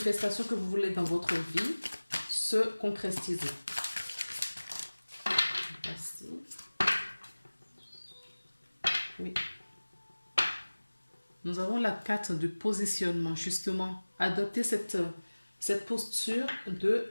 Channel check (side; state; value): both; inverted; correlation -1.00